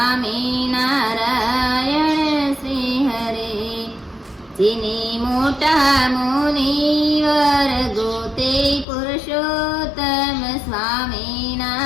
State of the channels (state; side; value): drops out; right; at 8.8 s